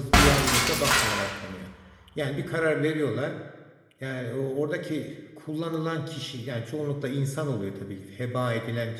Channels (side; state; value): both; identical; correlation 1.00